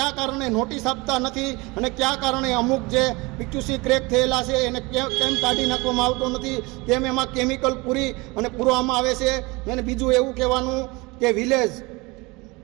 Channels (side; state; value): left; quieter; 24.8 dB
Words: કારણે નોટિસ આપતા નથી અને કયા કારણે અમુક જે પીટીસી ક્રેક થયેલા છે એને કેમ કાઢી નાખવામાં આવતો નથી, કેમ એમાં કેમિકલ પૂરવામાં આવે છે। અને બીજું એવું કહેવાનું કે વિલેજ